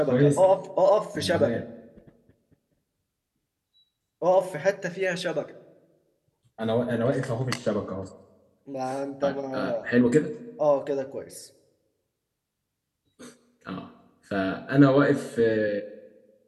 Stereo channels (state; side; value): identical; both; correlation 1.00